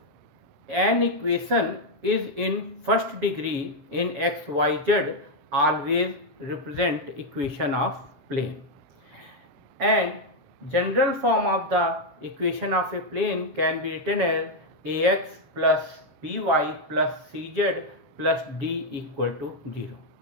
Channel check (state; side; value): late; left; 7.0 ms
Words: an equation is in first degree in x, y, z, always represent equation of plane. And general form of the equation of a plane can be written as ax plus by plus cz plus d equal to 0.